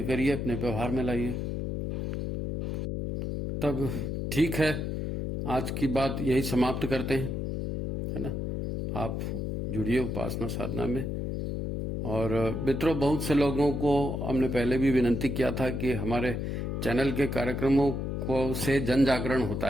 करिए, अपने व्यवहार में लाइए, तब ठीक है। आज की बात यही समाप्त करते हैं, है ना। आप जुड़िए उपासना साधना में। और मित्रों, बहुत से लोगों को हमने पहले भी विनती किया था कि हमारे चैनल के कार्यक्रमों को से जन जागरण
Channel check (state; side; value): noise; left; hum, 3 dB below the sound